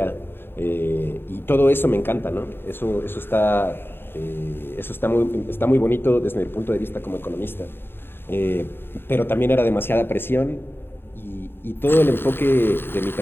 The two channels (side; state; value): right; late; 0.11 ms